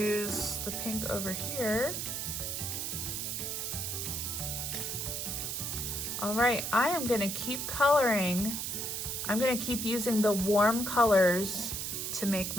the pink over here. All right, I am gonna keep coloring. I'm gonna keep using the warm colors to make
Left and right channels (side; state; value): right; noise; hiss, 3 dB below the sound